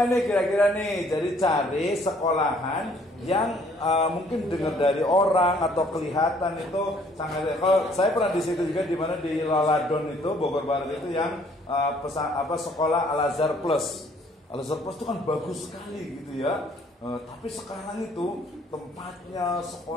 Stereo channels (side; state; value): both; normal; correlation 0.61